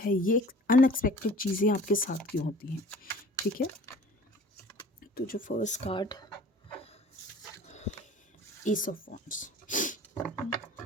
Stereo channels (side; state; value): both; normal; correlation 0.46